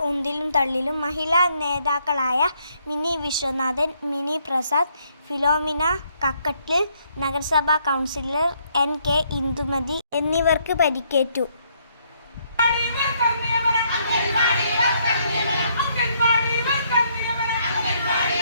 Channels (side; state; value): both; inverted; correlation -0.70